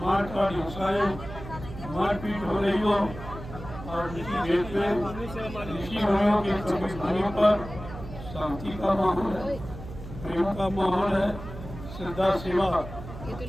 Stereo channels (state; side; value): noise; right; hum, 12 dB below the sound